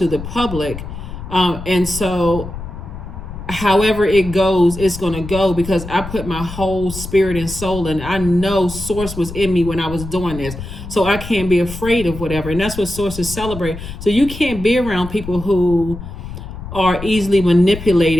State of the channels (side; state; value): left; noise; rumble, 10 dB below the sound